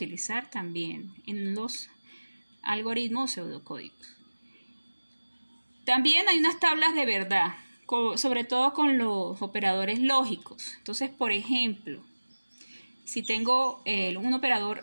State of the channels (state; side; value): inverted; both; correlation -1.00